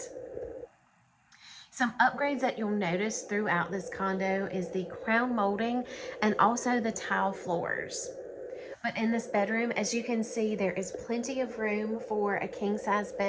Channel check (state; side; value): identical; both; correlation 1.00